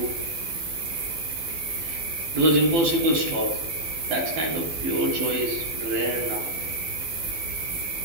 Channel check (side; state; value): left; late; 12 ms